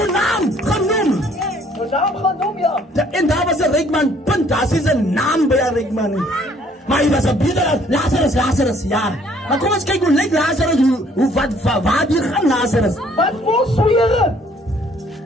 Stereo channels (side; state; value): both; normal; correlation 0.61